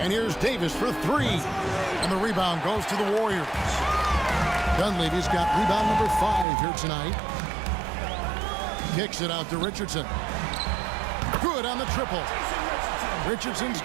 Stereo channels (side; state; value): left; drops out; at 6.5 s